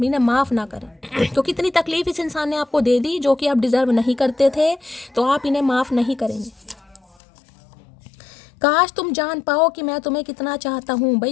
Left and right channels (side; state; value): right; drops out; at 7.2 s